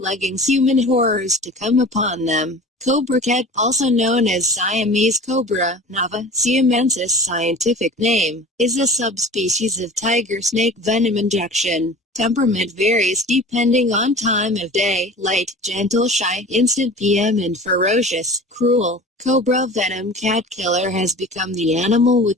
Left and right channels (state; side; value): normal; both; correlation 0.39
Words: human horrors to come upon them. Cobra cat, also known as Siamese cobra, Nava siamensis scientific name, is a subspecies of tiger snake venom injection. Temperament varies depending on time of day, light, gentle, shy, instant PM and ferocious, cruel. Cobra venom cat killer has become the animal